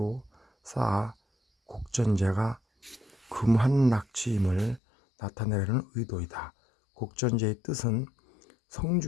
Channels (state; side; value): drops out; right; at 4.8 s